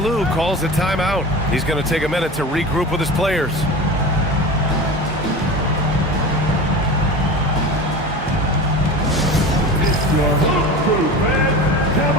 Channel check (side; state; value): both; normal; correlation 0.31